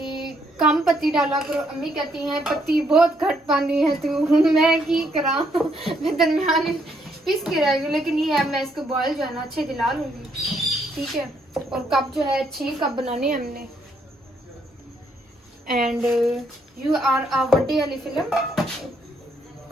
कम पत्ती डाला करो, अम्मी कहती हैं पत्ती बहुत घट पानी है तू। मैं की करा, मैं दरमियान पीस के रह गई। लेकिन ये है मैं इसको बॉयल जो है ना अच्छे दिला लूंगी। ठीक है, और कप जो है 6 कप बनाने हैं हमने। And you are a birthday वाली फिल्म।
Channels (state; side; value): normal; both; correlation 0.72